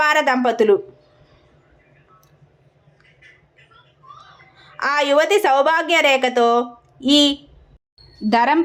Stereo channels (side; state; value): both; identical; correlation 1.00